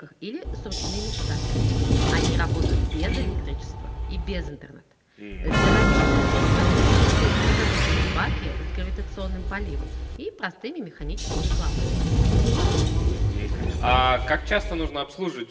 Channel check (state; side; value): identical; both; correlation 1.00